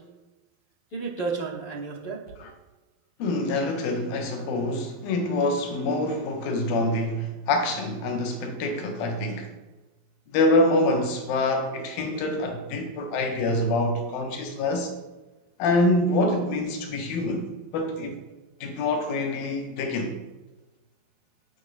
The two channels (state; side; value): late; right; 12 ms